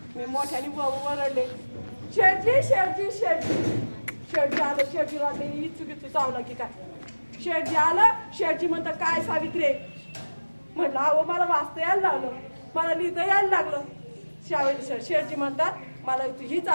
मी मोठ्याने वरडले शेठजी आलं शेठजी वाटले इचुकीचं चावलं की काय शेठजी आलं शेठजी म्हणतात काय सावित्री म्हटलं अहो मला वाचता यायला लागलं मला लिहिता यायला लागलं शेठजी म्हणतात मला हीच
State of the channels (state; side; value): inverted; both; correlation -1.00